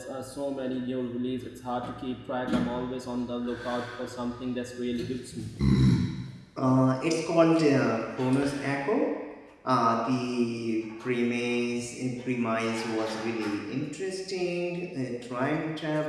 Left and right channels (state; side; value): identical; both; correlation 1.00